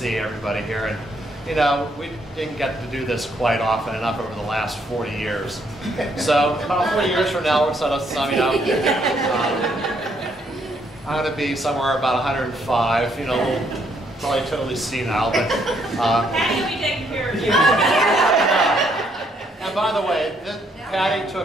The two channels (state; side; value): normal; both; correlation 0.71